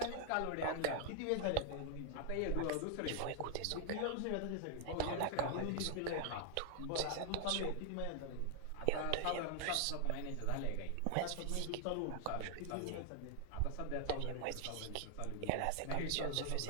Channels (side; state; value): both; different; correlation 0.00